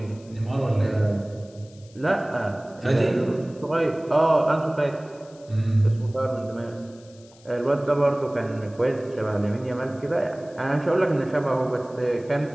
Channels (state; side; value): noise; left; hiss, 27 dB below the sound